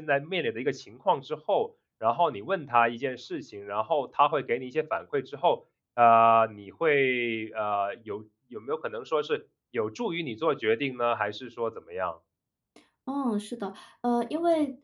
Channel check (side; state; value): both; identical; correlation 1.00